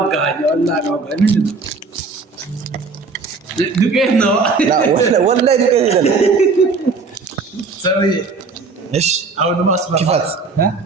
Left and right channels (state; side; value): quieter; left; 4.3 dB